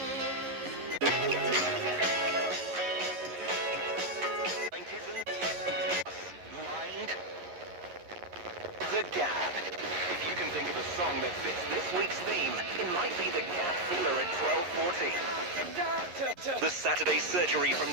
The Gap. If you can think of a song that fits this week's theme, it might be The Gap Feeler at 12:40. The Saturday Surgery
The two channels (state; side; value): late; left; 11 ms